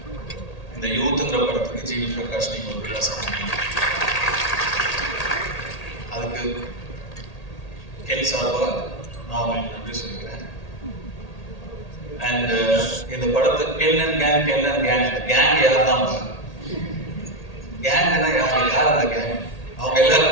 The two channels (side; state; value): right; late; 1.8 ms